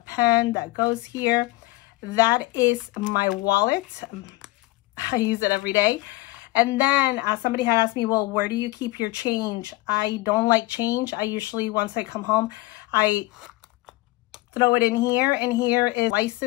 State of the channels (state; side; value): quieter; right; 20.6 dB